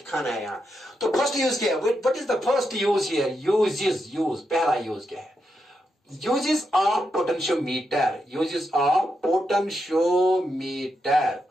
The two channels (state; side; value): normal; both; correlation 0.84